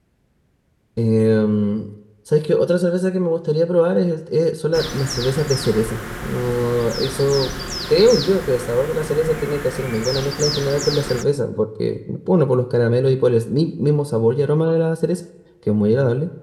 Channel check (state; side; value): identical; both; correlation 1.00